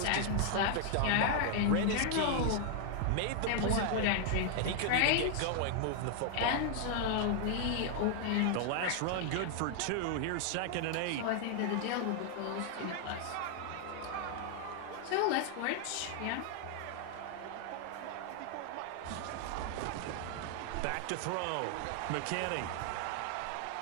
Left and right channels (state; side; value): different; both; correlation 0.00